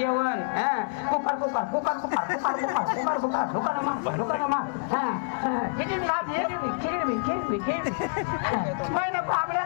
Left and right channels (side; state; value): right; silent; 60 dB below the other